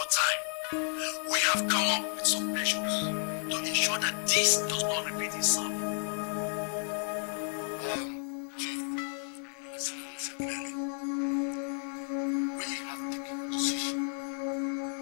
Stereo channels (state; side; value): silent; right; 55 dB below the other